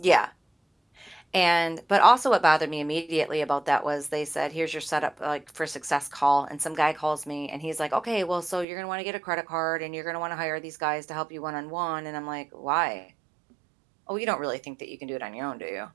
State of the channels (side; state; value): left; drops out; at 8.7 s